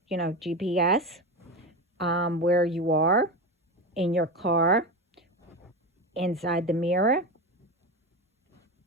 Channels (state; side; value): normal; both; correlation 0.20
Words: GPS, where you are in your car, inside the mirror.